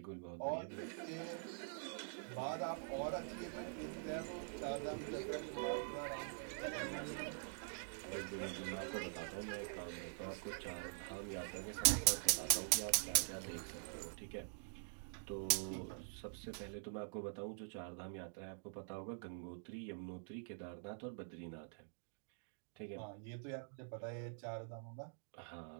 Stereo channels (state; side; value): silent; left; digital silence